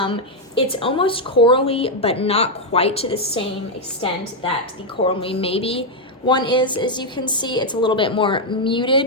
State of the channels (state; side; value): normal; both; correlation 0.01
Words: It's almost corally, but not quite to the same extent that the Coral Me Maybe one is. As you can see, it's a little bit more